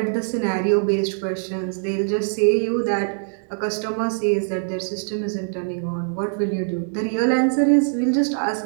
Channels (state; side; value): silent; left; digital silence